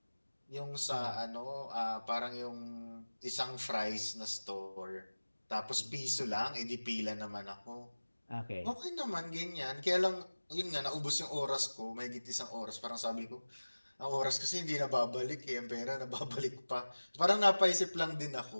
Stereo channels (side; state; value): both; inverted; correlation -1.00